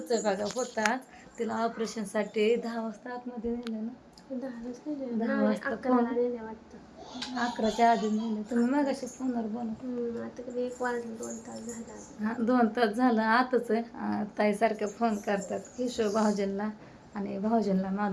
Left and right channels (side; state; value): both; identical; correlation 1.00